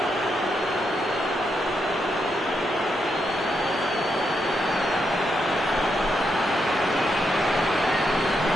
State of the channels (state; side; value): normal; both; correlation 0.81